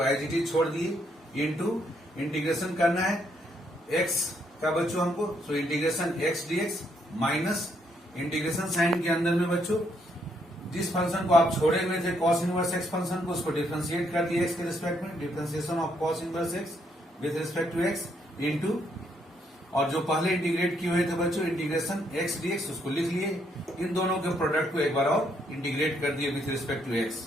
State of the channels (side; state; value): both; normal; correlation 0.73